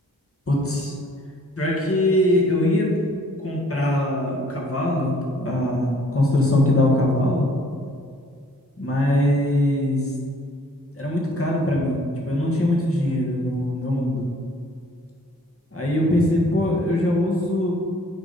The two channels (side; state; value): both; normal; correlation 0.59